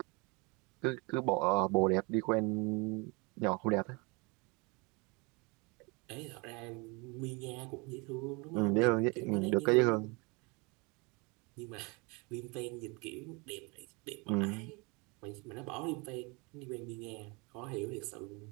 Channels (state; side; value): quieter; left; 28.7 dB